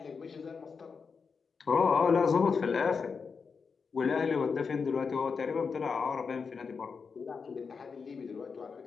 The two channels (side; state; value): right; quieter; 5.4 dB